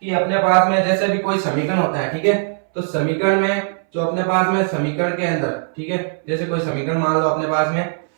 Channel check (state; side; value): silent; left; 64 dB below the other